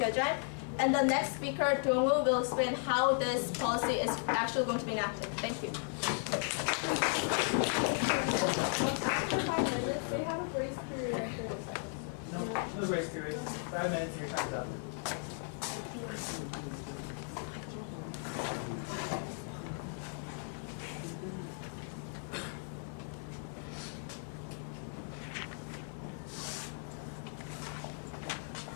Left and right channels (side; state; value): right; silent; 54 dB below the other